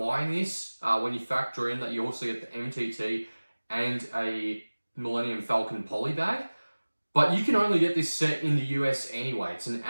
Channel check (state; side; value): inverted; both; correlation -1.00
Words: this when you factor in that you also get the MTT and a Millennium Falcon poly bag. But you can only get this set in the US anyway. It's an